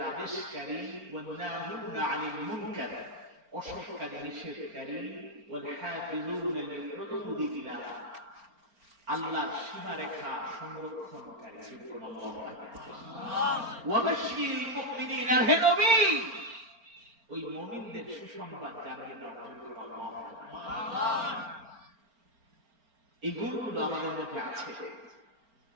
আদেশকারী। ওয়ান-নাহিউনা আনিল মুনকার, অসৎকারী, নিষেধকারী, ওয়াল হাফিজুনা লিহুদুদিল্লাহ, আল্লাহর সীমারেখা সংরক্ষণকারী। সুবহানাল্লাহ। ওয়া বাশশিরিল মুমিনিনা, হে নবী ওই মুমিনদের সুসংবাদ জানিয়ে দাও। সুবহানাল্লাহ। এই গুণগুলো আমাদের মধ্যে আছে,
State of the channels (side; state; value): left; late; 4.4 ms